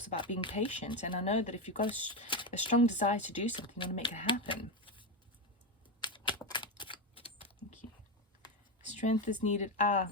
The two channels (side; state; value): both; normal; correlation 0.12